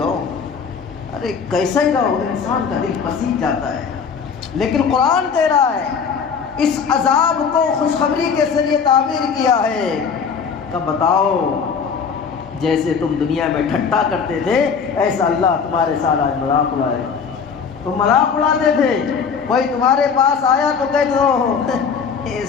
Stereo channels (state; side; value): quieter; right; 6.1 dB